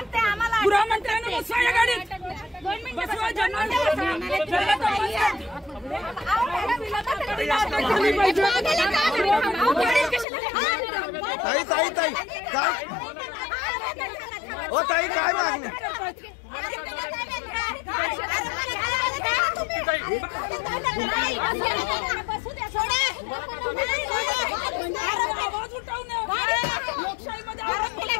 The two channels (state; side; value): drops out; right; at 10.2 s